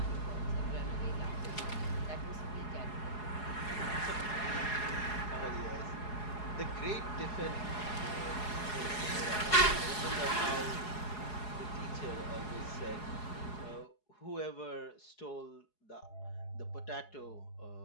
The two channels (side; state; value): right; late; 4.8 ms